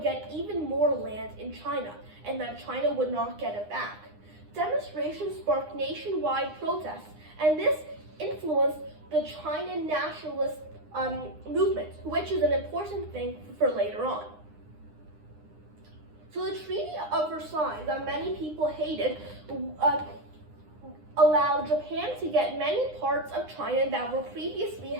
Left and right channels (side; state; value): left; late; 9.8 ms